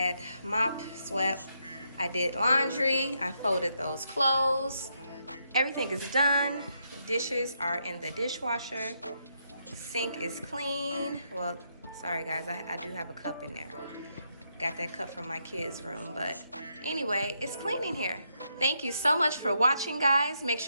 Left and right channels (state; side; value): inverted; both; correlation -0.79